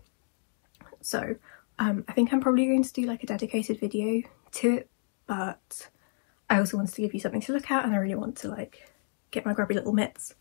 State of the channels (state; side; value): silent; right; digital silence